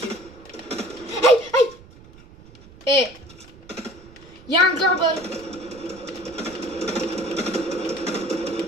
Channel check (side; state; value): right; noise; rumble, 22 dB below the sound